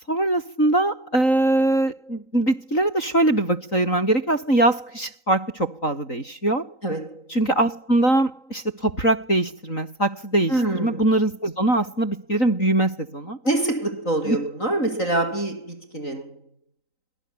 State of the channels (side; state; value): right; late; 3.9 ms